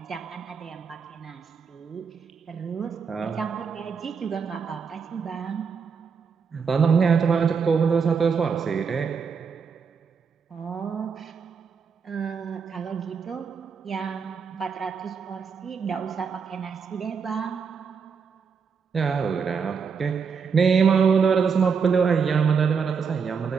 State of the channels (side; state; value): left; quieter; 6.0 dB